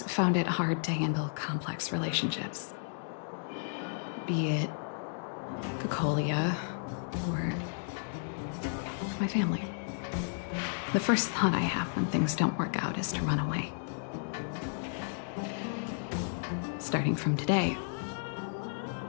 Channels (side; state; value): right; silent; digital silence